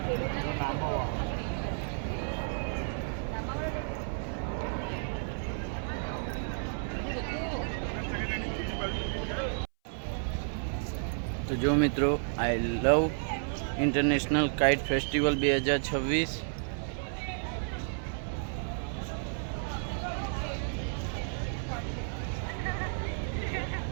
તો જો મિત્રો, આઈ લવ ઇન્ટરનેશનલ કાઇટ ફેસ્ટિવલ 2026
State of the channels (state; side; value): silent; left; 56 dB below the other